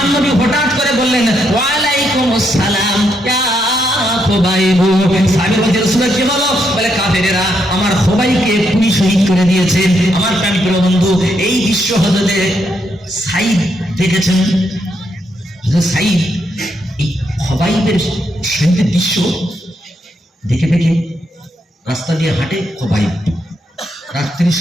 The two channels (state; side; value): normal; both; correlation 0.78